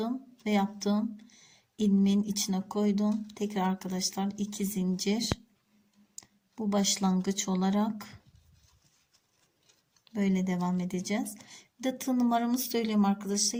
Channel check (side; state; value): both; identical; correlation 1.00